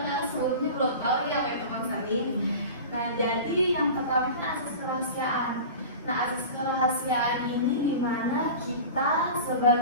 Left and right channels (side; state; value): both; inverted; correlation -0.34